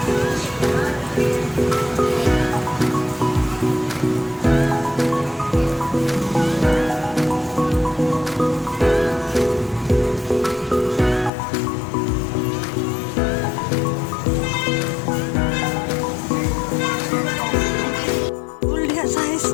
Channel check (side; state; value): right; drops out; at 11.3 s